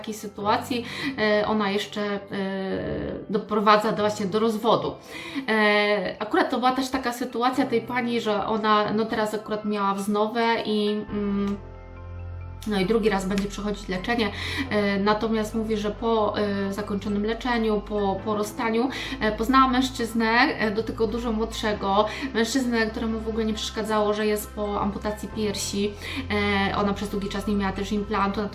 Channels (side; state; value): both; identical; correlation 1.00